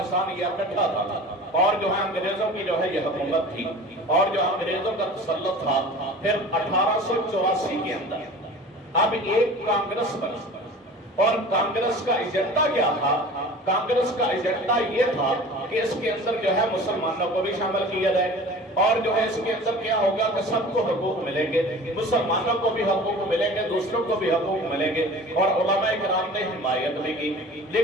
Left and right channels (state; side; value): normal; both; correlation 0.40